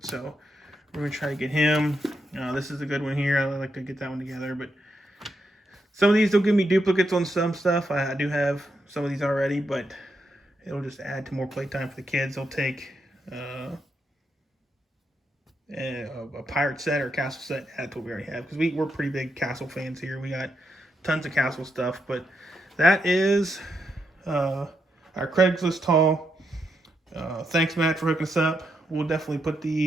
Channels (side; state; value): both; normal; correlation 0.82